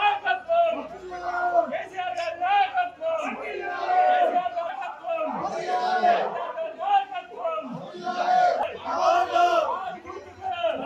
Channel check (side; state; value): both; identical; correlation 1.00